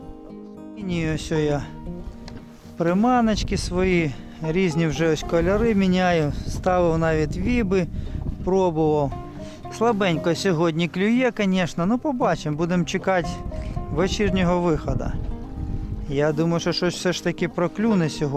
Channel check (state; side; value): identical; both; correlation 1.00